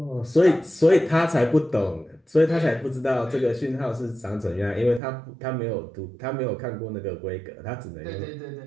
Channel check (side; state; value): left; drops out; at 5.0 s